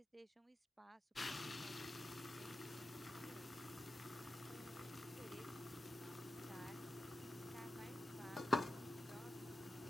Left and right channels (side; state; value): both; normal; correlation 0.89